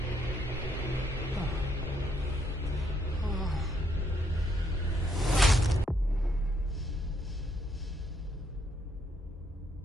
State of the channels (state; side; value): normal; both; correlation 0.74